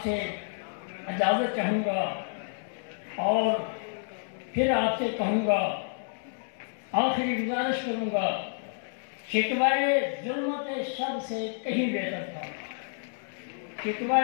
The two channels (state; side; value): silent; right; digital silence